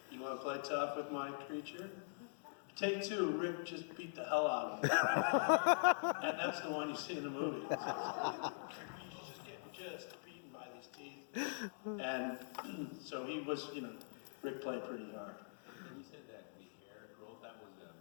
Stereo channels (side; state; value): right; silent; digital silence